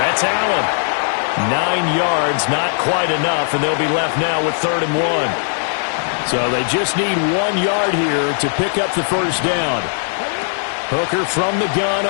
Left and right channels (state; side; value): silent; right; digital silence